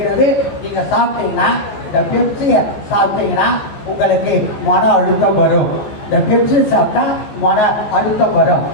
நீங்க சாப்பிட்டீங்கன்னா, இந்த பெப்சியை சாப்பிட்டீங்கன்னா உங்களுக்கு மன அழுத்தம் வரும். இந்த பெப்சி சாப்பிட்டா மன அழுத்தம் வரும்.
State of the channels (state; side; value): late; right; 14 ms